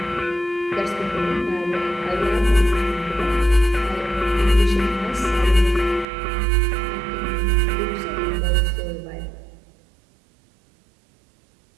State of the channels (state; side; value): drops out; left; at 6.1 s